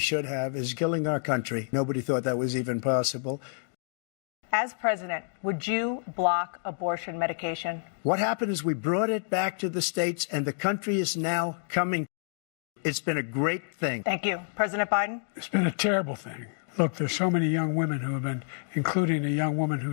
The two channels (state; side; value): silent; right; digital silence